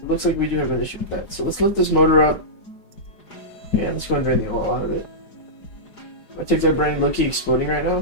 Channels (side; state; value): right; late; 4.9 ms